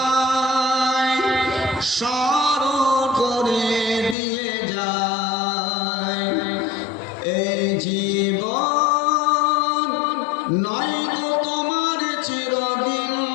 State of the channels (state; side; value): drops out; right; at 4.2 s